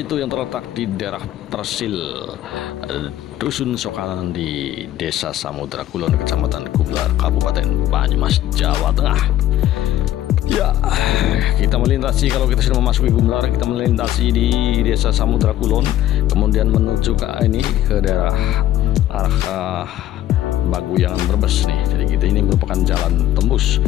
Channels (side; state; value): right; quieter; 12.9 dB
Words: yang terletak di daerah Persil, Dusun Sokanan di Desa Samudra Kulon, Kecamatan Gumlar, Kabupaten Banyumas, Jawa Tengah. Ya, kita melintasi, kalau kita sudah memasuki Gumlar, kita melintasi di Desa Samudra Kulon, kemudian menuju ke daerah arah Baguyangan Brebes nih. Jadi kita ini merupakan jalan tembus